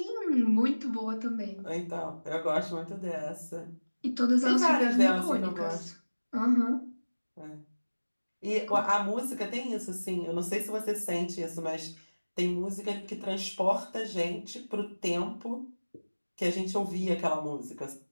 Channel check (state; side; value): inverted; both; correlation -1.00